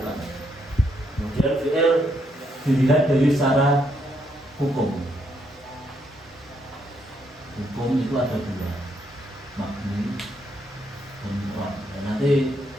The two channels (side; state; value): both; normal; correlation 0.75